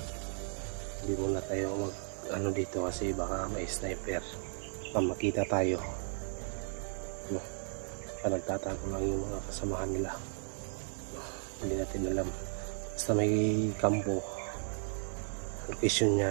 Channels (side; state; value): left; silent; 54 dB below the other